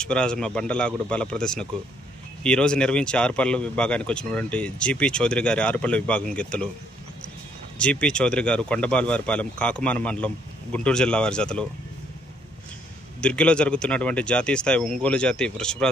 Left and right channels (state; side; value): normal; both; correlation 0.69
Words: బండలాగుడు బల ప్రదర్శనకు ఈరోజు నిర్వహించి ఆరుపల్ల విభాగానికి వచ్చినటువంటి జీపీ చౌదరి గారి ఆరుపల్ల విభాగం గెత్తులు. జీపీ చౌదరి గారు కొండబాలవారిపాలెం కాకుమాన మండలం గుంటూరు జిల్లా వారి జతలు. దుర్గిలో జరుగుతున్నటువంటి జాతీయ స్థాయి ఒంగోలు జాతి